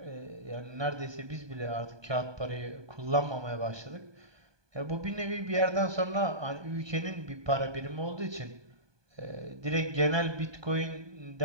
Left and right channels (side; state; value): left; late; 1.2 ms